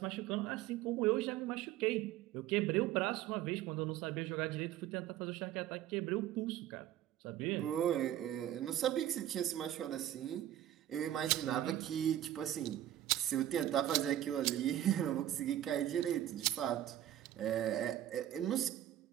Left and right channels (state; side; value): quieter; left; 12.3 dB